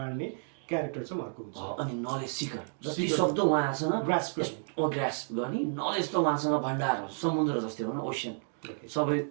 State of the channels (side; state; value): left; silent; 57 dB below the other